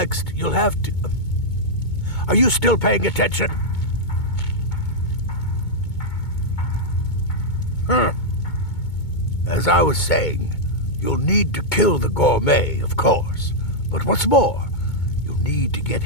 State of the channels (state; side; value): late; right; 2.2 ms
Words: you'll have to... Are you still paying attention? As I was saying, you'll need to kill the Gourmet, of course. But what's more, you'll need to get